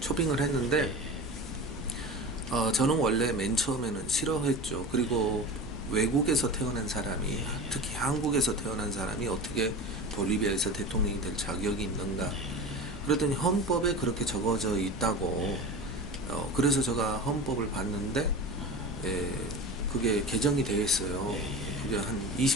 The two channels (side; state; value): both; normal; correlation 0.31